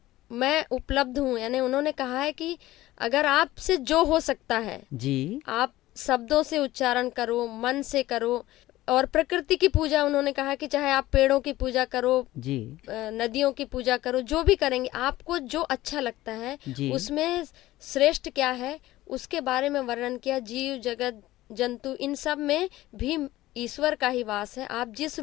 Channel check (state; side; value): quieter; right; 16.5 dB